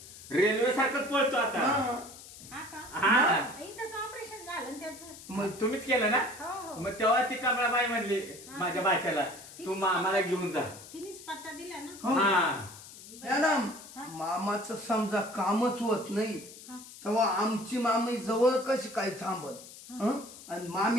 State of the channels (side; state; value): left; noise; hiss, 17 dB below the sound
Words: रेल्वे सारखंच पळतो आता. हा. हा का? हा. इथंच ऑपरेशन झालं ना त्याचं. मग तुम्हीच केलं ना? हो हो. मग तेव्हा ती कमळाबाई म्हणली माझ्या बाच्याला, तू मामाला घेऊन जा. तिनेच पत्ता दिला ना. हो. हा. मॅडम, मामाचं समजा कामच होत नाही हा. तेव्हा आमची मामी जवळ कशी काय थांबत. हं? आणि